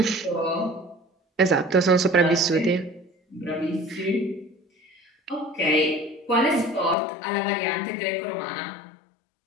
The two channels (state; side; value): drops out; right; at 7.0 s